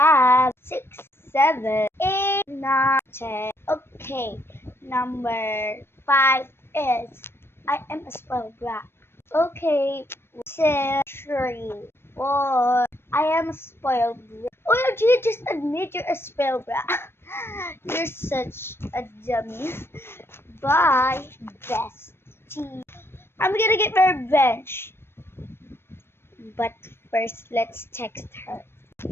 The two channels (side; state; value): right; late; 0.12 ms